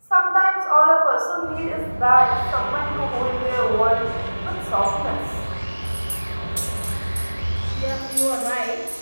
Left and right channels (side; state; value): both; inverted; correlation -1.00